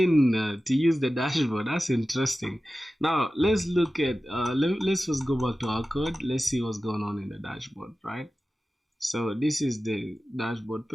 to use the dashboard. That's interesting. Now let's look at let's first go back to our code. Let's see what's going on in the dashboard, right? So this is the dashboard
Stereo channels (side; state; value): both; normal; correlation 0.95